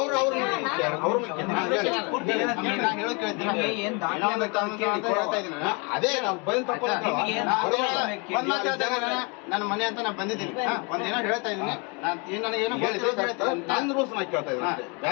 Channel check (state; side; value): quieter; right; 30.4 dB